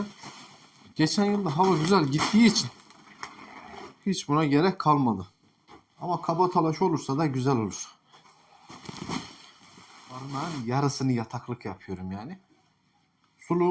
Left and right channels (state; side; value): identical; both; correlation 1.00